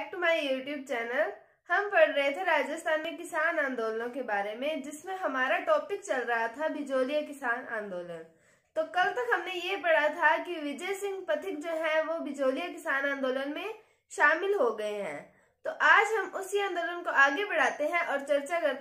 to my YouTube channel. हम पढ़ रहे थे राजस्थान में किसान आंदोलनों के बारे में, जिसमें हमारा टॉपिक चल रहा था बिजोलिया किसान आंदोलन। तो कल तक हमने ये पढ़ा था कि विजय सिंह पथिक जो है वो बिजोलिया किसान आंदोलन में शामिल हो गए हैं। तो आज हम उसी आंदोलन को आगे बढ़ाते हैं और चर्चा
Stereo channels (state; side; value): identical; both; correlation 1.00